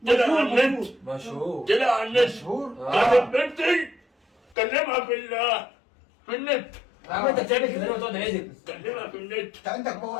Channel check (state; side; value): drops out; right; at 4.5 s